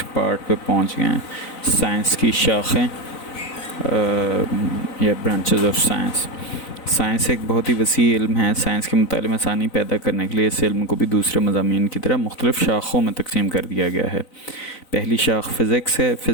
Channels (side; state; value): right; late; 4.0 ms